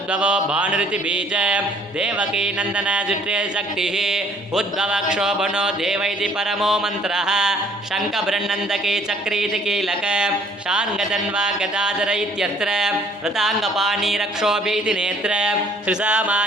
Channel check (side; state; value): both; normal; correlation 0.59